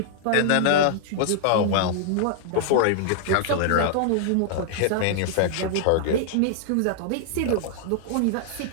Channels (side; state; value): both; different; correlation -0.01